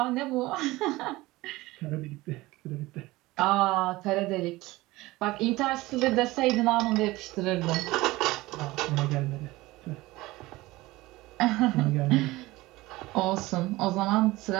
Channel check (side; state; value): left; quieter; 19.5 dB